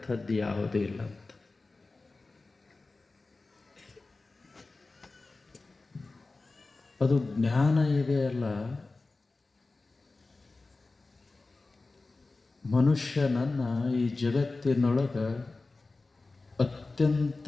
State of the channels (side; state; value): right; quieter; 3.5 dB